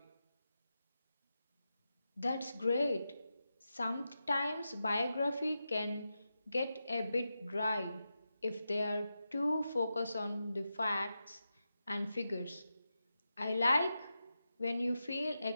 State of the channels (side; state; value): both; inverted; correlation -0.90